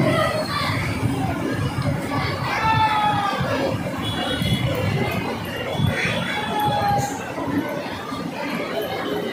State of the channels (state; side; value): identical; both; correlation 1.00